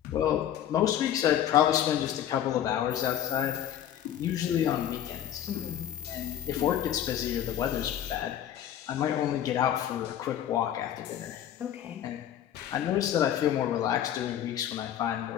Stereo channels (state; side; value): quieter; right; 10.6 dB